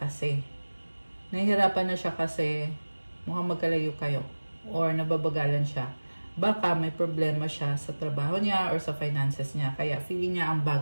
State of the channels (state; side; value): inverted; both; correlation -1.00